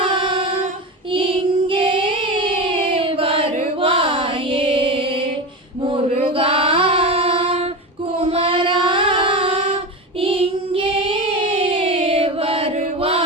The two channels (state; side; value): normal; both; correlation 0.22